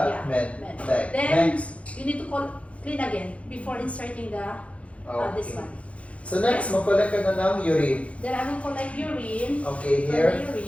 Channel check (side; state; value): right; late; 0.063 ms